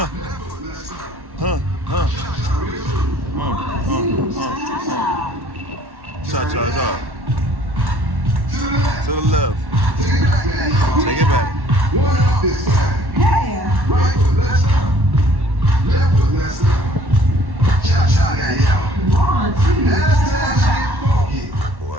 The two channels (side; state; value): left; late; 1.1 ms